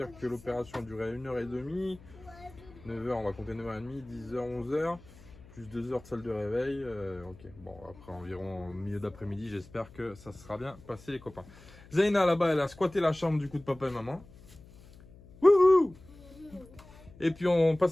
que l'opération durait 1h30. 9h, on va compter 9h30, 10h, 11h. plus 2 heures de salle de réveil. Ok, bon, après environ au milieu d'après-midi, j'espère que ça sera bien passé, les copains. Zaina, là-bas, elle a squatté la chambre du coup de papa et maman. Wouhou! Et puis on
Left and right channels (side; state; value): left; noise; hum, 21 dB below the sound